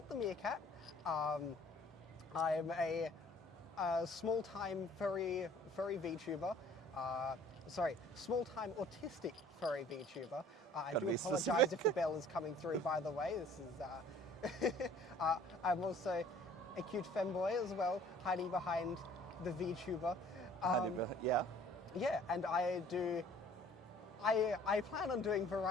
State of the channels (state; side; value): normal; both; correlation 0.53